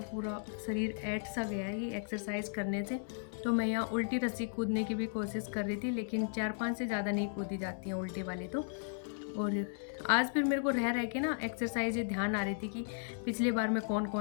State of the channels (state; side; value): silent; right; digital silence